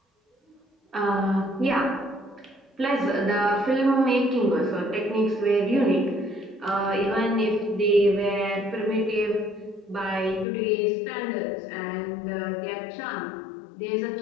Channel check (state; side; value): drops out; right; at 10.5 s